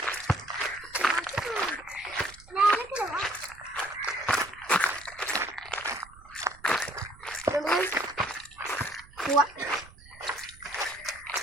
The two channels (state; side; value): noise; right; rumble, 22 dB below the sound